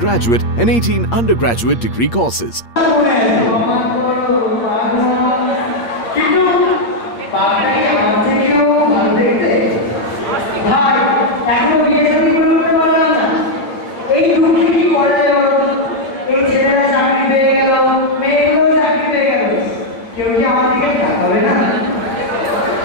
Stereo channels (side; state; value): right; late; 8.6 ms